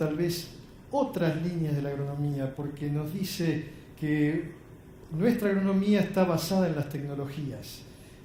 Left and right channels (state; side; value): identical; both; correlation 1.00